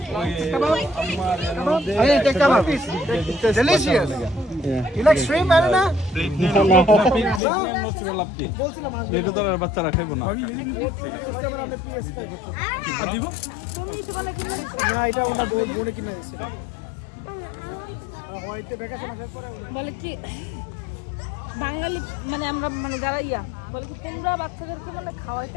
Hey, take kebab. Delicious. You like shrimp, Aruna? এটা তো আর বাচ্চারা খাইবো না দিব না এটা ওনা বলে কিনা দিছে বলে কি বাঙালি মানে আমরা মানে যারা বলে কি তোমরা বাচ্চাদেরকে মানে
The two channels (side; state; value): right; drops out; at 7.4 s